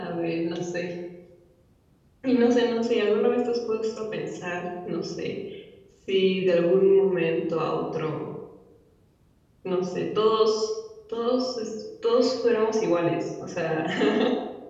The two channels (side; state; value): both; identical; correlation 1.00